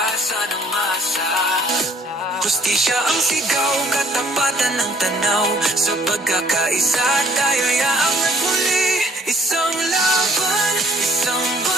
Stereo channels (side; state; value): both; normal; correlation 0.59